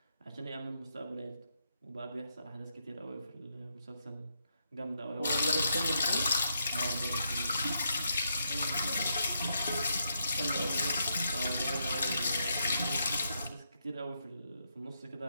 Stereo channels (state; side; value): inverted; both; correlation -0.80